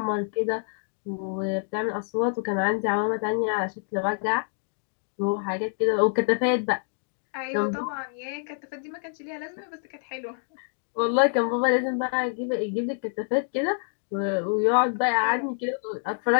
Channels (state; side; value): silent; right; digital silence